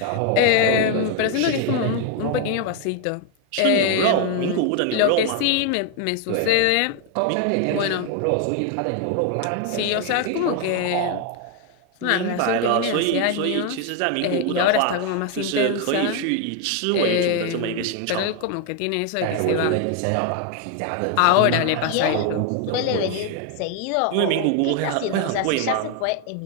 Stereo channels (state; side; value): different; both; correlation 0.01